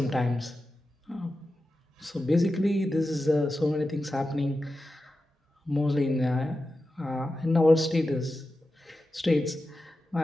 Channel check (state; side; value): normal; both; correlation 0.92